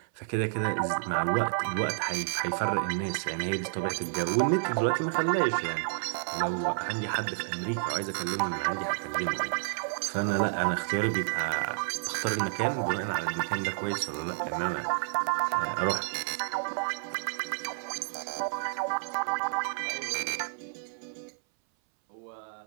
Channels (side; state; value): left; silent; 58 dB below the other